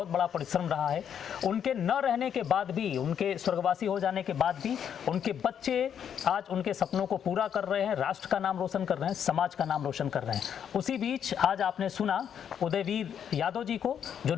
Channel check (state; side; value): quieter; right; 8.6 dB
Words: बड़ा परिश्रम रहा है। उनके न रहने के बाद भी, उनके स्वर्गवासी हो जाने के बाद भी उनके बच्चे आज उनके सपनों को पूरा कर रहे हैं, राष्ट्र का नाम रोशन कर रहे हैं, समाज का नाम रोशन कर रहे हैं। उसी बीच आज आपने सुना उदयवीर यादव जी को जो